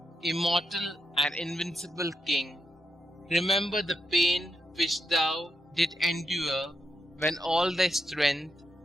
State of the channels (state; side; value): normal; both; correlation 0.83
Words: immortal and invincible King, remember the pain which thou didst endure when all thy strength,